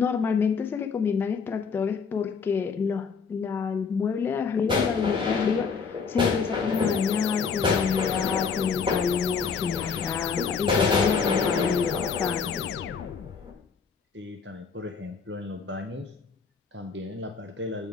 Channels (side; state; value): right; quieter; 5.6 dB